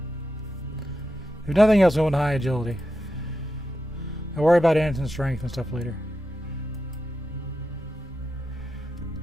If nothing else, we want high agility. I'll worry about instant strength and stuff later.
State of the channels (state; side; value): normal; both; correlation 0.88